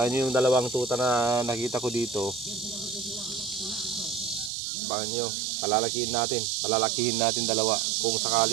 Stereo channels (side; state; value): left; drops out; at 4.5 s